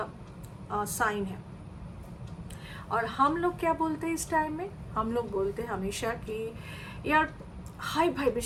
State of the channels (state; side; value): identical; both; correlation 1.00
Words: साइन है। और हम लोग क्या बोलते हैं इस टाइम में? हम लोग बोलते हैं हमेशा कि यार हाई